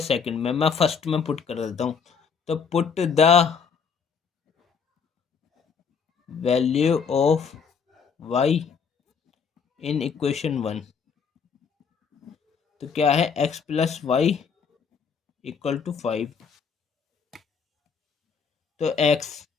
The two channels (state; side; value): quieter; right; 6.1 dB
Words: सेकंड में, मैं फर्स्ट में पुट कर देता हूँ। तो put the value of y in equation 1। तो क्या है, x plus y equal to 5। तो x